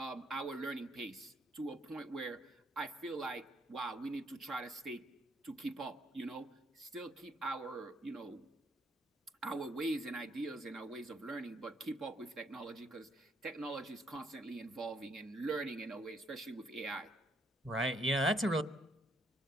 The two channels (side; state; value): both; normal; correlation 0.70